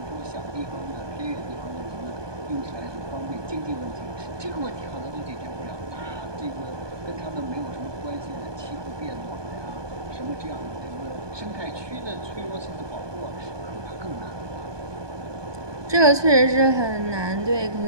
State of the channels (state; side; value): late; left; 1.2 ms